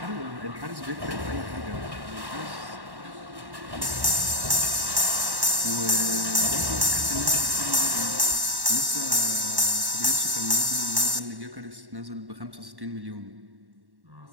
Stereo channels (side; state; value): left; late; 1.1 ms